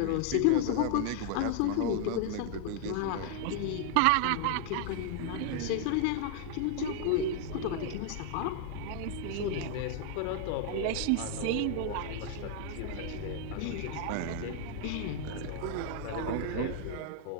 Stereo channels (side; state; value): both; different; correlation 0.00